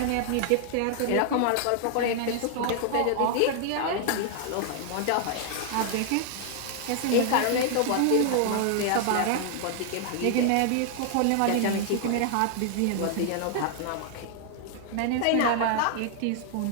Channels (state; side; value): different; both; correlation 0.00